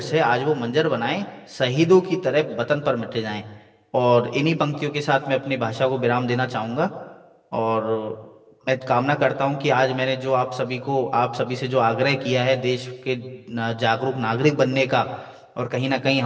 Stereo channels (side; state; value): both; identical; correlation 1.00